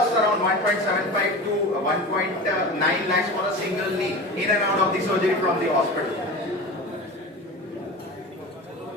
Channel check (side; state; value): both; normal; correlation 0.31